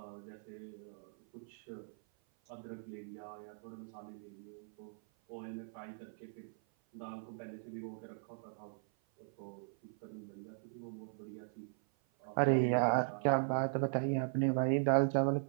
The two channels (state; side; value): silent; left; 52 dB below the other